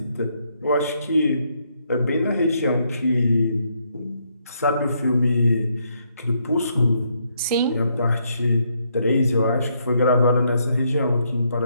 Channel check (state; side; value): inverted; both; correlation -0.75